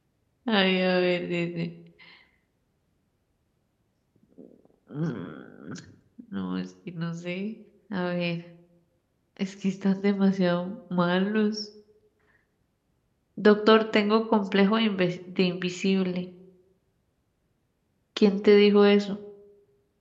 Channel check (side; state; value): both; identical; correlation 1.00